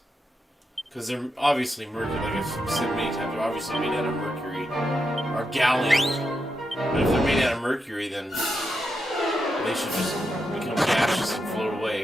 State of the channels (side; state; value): both; normal; correlation 0.85